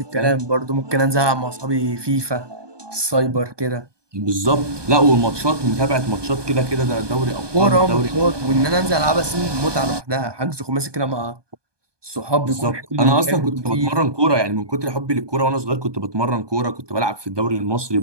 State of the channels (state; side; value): late; left; 1.2 ms